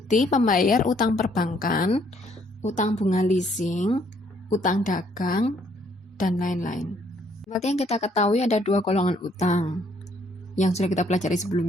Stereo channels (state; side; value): normal; both; correlation 0.66